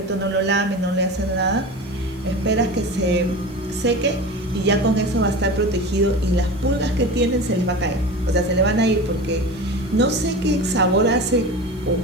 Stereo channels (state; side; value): normal; both; correlation 0.31